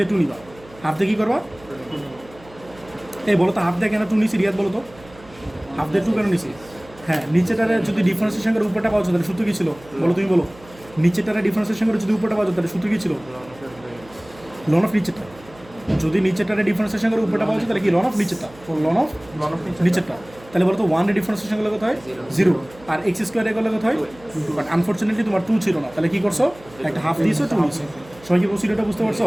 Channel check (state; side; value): noise; right; hum, 23 dB below the sound